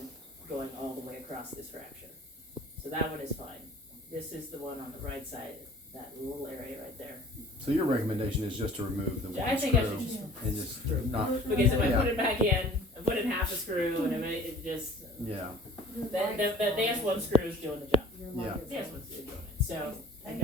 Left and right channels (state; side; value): normal; both; correlation 0.49